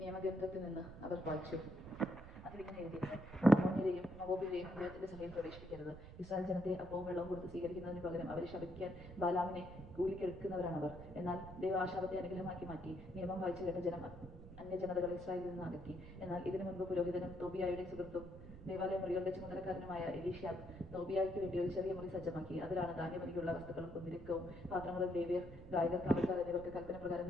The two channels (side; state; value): right; noise; rumble, 14 dB below the sound